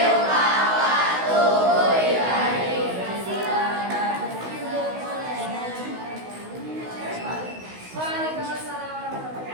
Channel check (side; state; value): left; late; 16 ms